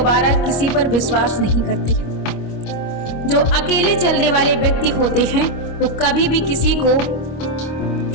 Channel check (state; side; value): late; right; 25 ms